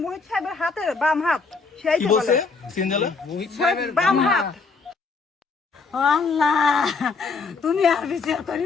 মোহিত সাহেবের হাতের বাম হাত, সেই কি বলছে সিনজালা? বাম হাত। আল্লাহ তুমি আর বিচার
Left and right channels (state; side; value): quieter; right; 4.5 dB